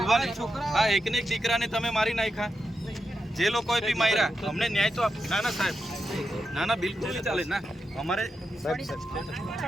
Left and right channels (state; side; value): normal; both; correlation 0.87